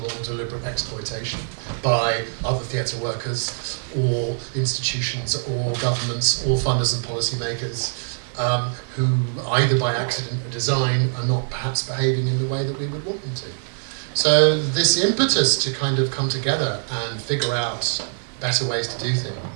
or deliberate exploitation by other theatre workers or institutions or governments or funders and policymakers who, either by accident or design, are not perhaps behaving in the way that we would want them to. So this impetus to kind of come together and figure out better ways to do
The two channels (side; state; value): left; silent; 63 dB below the other